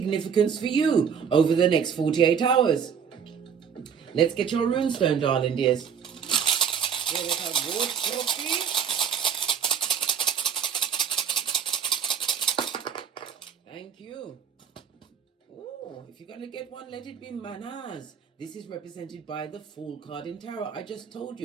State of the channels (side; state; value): left; quieter; 7.3 dB